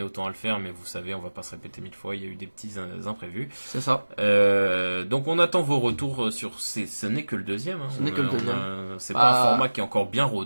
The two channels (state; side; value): inverted; both; correlation -1.00